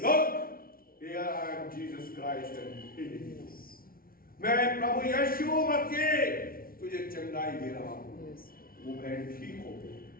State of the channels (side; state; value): right; late; 0.43 ms